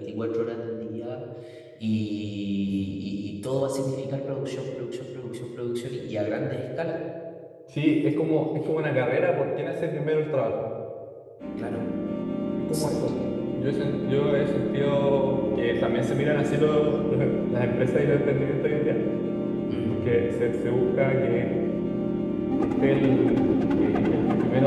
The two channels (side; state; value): both; identical; correlation 1.00